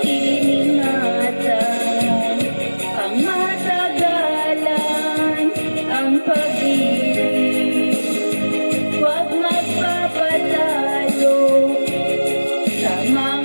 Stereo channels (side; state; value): both; inverted; correlation -1.00